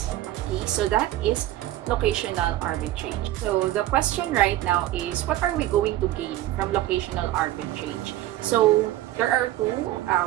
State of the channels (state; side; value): quieter; left; 14.8 dB